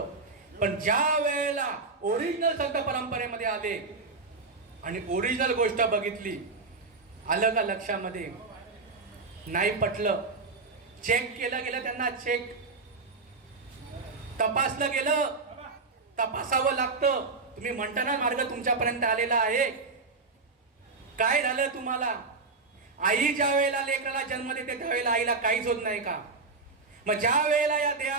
पण ज्या वेळेला ओरिजिनल संत परंपरेमध्ये आले आणि ओरिजिनल गोष्ट बघितली, आलं का लक्षामध्ये? नाही पटलं. चेक केलं गेलं त्यांना. चेक तपासलं गेलं. तपासावं लागतं. तुम्ही म्हणता ना मार्ग तुमच्यापर्यंत आलेला आहे. काय झालं तुम्हाला? आई ज्या वेळेला लेकराला जन्म देते त्यावेळेला आईला काहीच होत नाही का? मग ज्या वेळेला या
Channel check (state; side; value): quieter; left; 4.0 dB